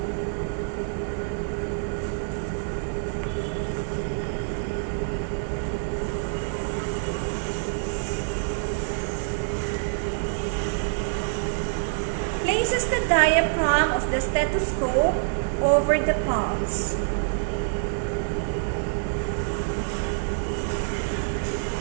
Places the diaphragm thumb of the stethoscope over the pulse.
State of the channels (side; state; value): left; silent; digital silence